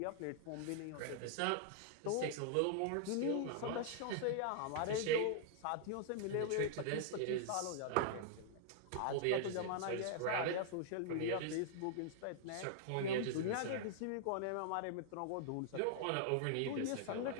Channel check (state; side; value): different; both; correlation -0.01